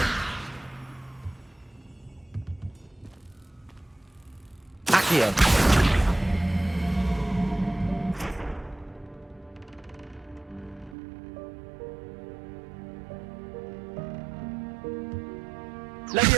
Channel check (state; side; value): drops out; left; at 11.0 s